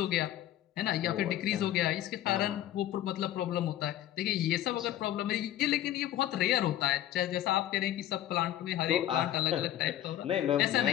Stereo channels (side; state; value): right; quieter; 13.0 dB